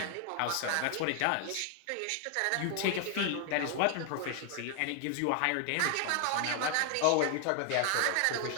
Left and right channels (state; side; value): different; both; correlation 0.00